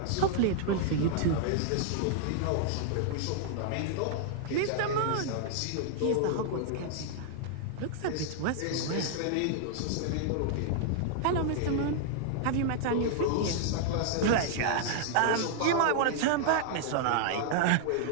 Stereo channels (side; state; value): both; different; correlation -0.01